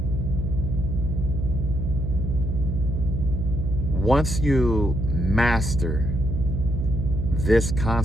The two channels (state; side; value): noise; right; hum, 3 dB below the sound